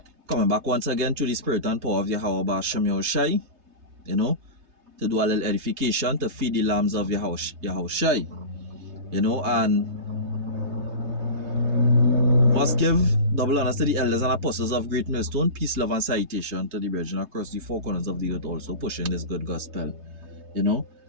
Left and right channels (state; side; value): late; left; 3.3 ms